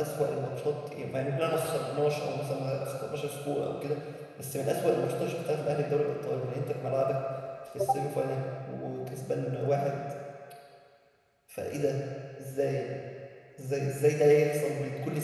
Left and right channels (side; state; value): both; identical; correlation 1.00